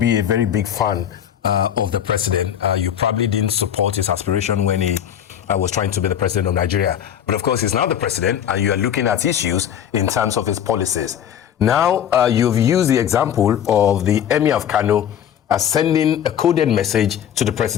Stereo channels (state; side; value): quieter; right; 9.7 dB